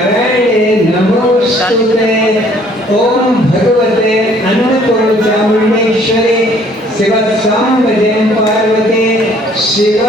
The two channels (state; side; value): normal; both; correlation 0.59